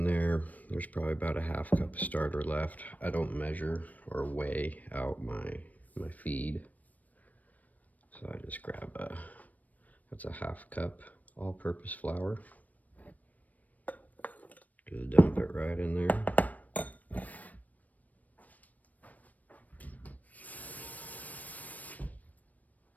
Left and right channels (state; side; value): late; right; 0.075 ms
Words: there, there's probably about a half cup of starter left. I don't measure or weigh out my feed, so I just grab that's a half cup all-purpose flour. Just dump it right in there.